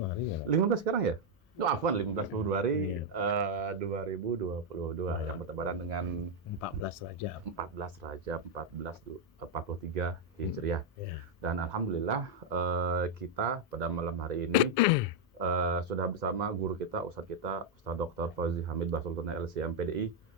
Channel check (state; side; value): normal; both; correlation 0.00